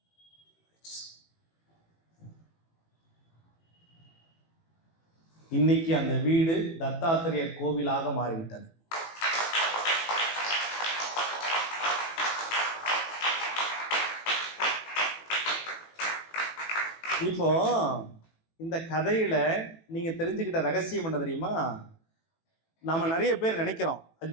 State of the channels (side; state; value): right; late; 18 ms